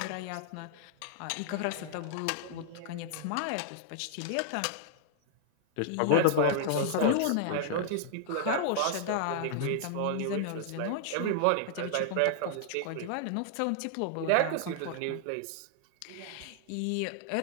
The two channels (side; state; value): both; different; correlation 0.00